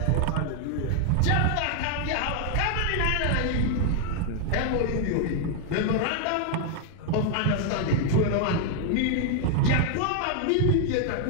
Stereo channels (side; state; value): both; different; correlation 0.00